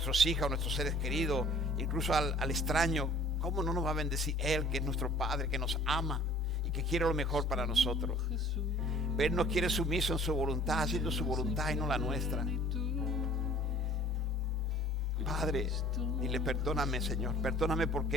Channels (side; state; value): both; normal; correlation 0.51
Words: hijos, a nuestros seres queridos, incluso al extraño, ¿cómo no nos va a bendecir Él, que es nuestro Padre, que nos ama y que quiere lo mejor para nosotros? Pero Él nos quiere sumiso en su voluntad, haciendo su voluntad y no la nuestra. Padre, dile: perdóname, Señor, perdóname